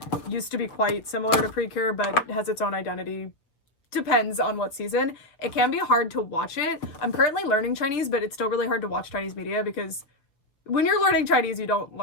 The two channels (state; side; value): late; right; 6.3 ms